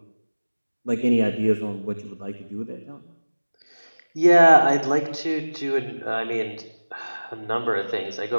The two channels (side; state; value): both; inverted; correlation -1.00